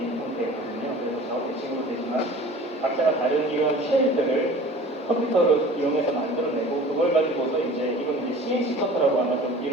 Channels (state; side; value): normal; both; correlation 0.43